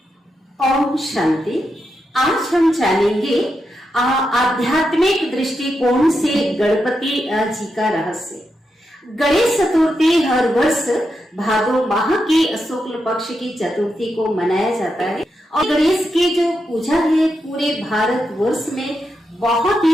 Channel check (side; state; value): both; normal; correlation 0.86